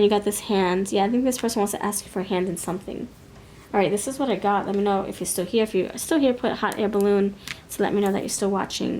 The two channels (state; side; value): identical; both; correlation 1.00